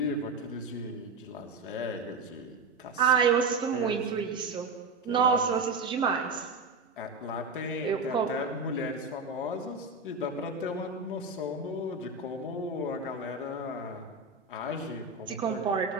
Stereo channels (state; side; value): quieter; left; 3.6 dB